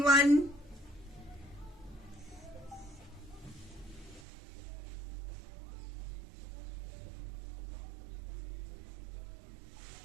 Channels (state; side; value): drops out; left; at 4.2 s